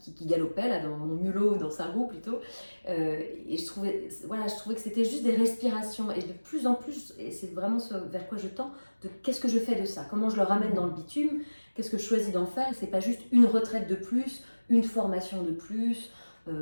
galopait, là, dans mon mulot, dans sa roue plutôt. Et je trouvais que c'était juste des respirations. Et de plus en plus, et c'est vraiment ce vers quoi je tends, de qu'est-ce que je fais de ça? Comment je le ramène dans le bitume? Qu'est-ce que je choisis d'en faire? C'est pas juste une retraite de plus, une formation de plus,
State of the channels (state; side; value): inverted; both; correlation -1.00